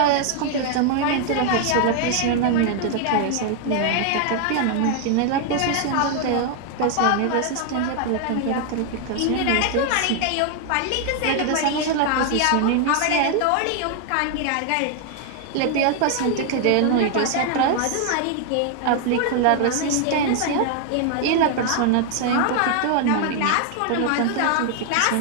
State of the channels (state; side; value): different; both; correlation 0.00